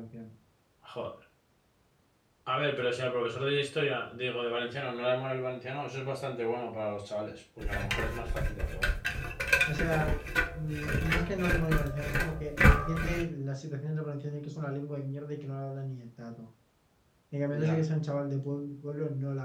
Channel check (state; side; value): identical; both; correlation 1.00